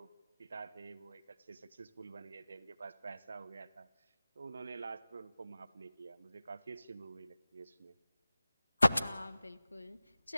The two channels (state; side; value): inverted; both; correlation -0.97